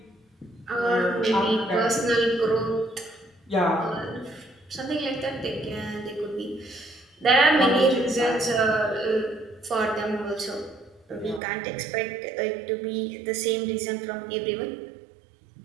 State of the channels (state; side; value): drops out; left; at 11.4 s